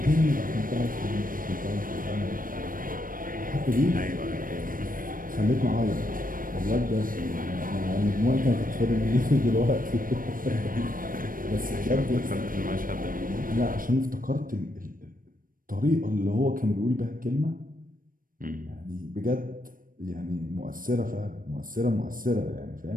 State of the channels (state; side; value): late; left; 0.40 ms